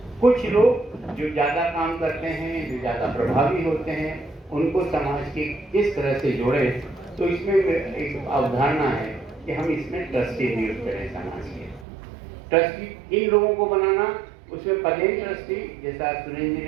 कुछ लोग जो ज़्यादा काम करते हैं, जो ज़्यादा प्रभावी होते हैं, उनको समाज के किस तरह से जोड़ें। तो इसमें एक अवधारणा है कि हम इसमें ट्रस्टी नियुक्त करें समाज के। ट्रस्टी इन लोगों को बनाना, उसमें प्लेन ट्रस्टी जैसा सुनील जी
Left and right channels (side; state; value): left; drops out; at 11.9 s